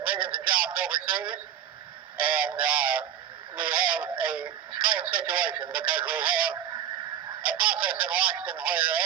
millions of jobs overseas, and we have a strange situation because we have a process in Washington where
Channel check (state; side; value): quieter; left; 10.0 dB